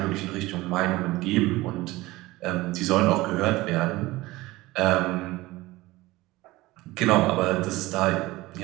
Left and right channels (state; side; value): quieter; left; 19.4 dB